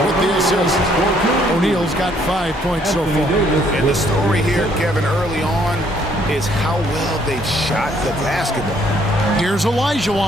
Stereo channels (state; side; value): normal; both; correlation 0.66